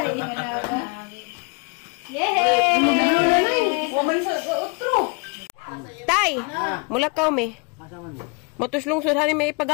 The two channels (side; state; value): right; quieter; 33.1 dB